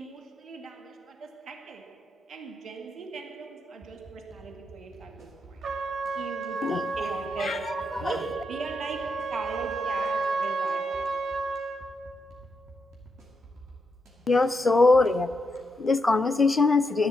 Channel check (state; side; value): normal; both; correlation 0.83